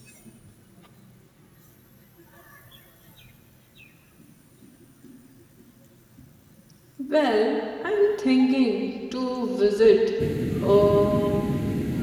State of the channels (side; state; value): both; identical; correlation 1.00